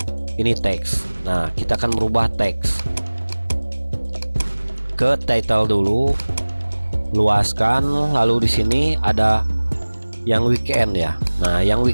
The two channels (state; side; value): inverted; both; correlation -1.00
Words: ini teks. Nah kita akan merubah teks ke title dulu, luaskan. Lalu di sini ada yang weekend ya. Nah yang